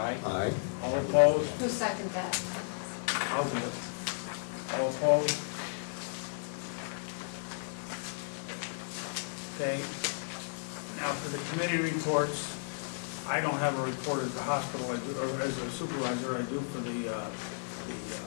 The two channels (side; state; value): right; silent; digital silence